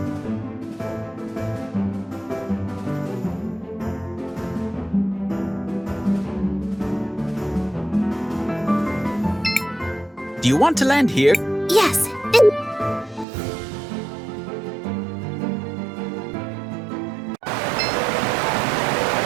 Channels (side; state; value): left; drops out; at 13.2 s